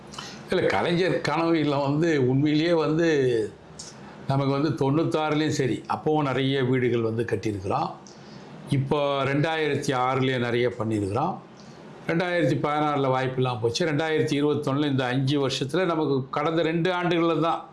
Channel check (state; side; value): identical; both; correlation 1.00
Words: இல்லை, கலைஞர் கனவு இல்லம் வந்து உண்மையிலேயே வந்து நமக்கு வந்து 96லேயும் சரி அப்போவும் நிறைய வீடுகள் வந்து கட்டியிருக்கிறோம். இப்போ 2006லேயே நிறைய பண்ணியிருக்கிறோம். 2016 வாய்ப்பெல்லாம் போச்சு. 2021 இந்த 5 வருஷத்தில் நமக்கு கடந்த 2 ஆண்டுகளில் தான்,